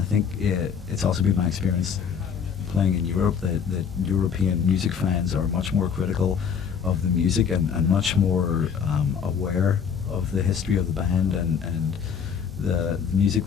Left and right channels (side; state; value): right; quieter; 7.0 dB